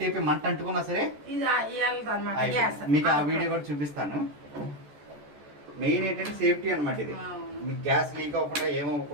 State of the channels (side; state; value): left; late; 14 ms